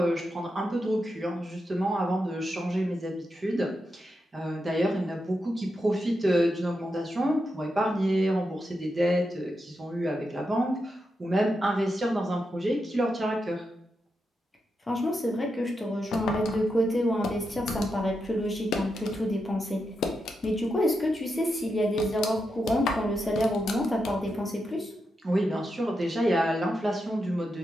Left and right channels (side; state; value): both; normal; correlation 0.86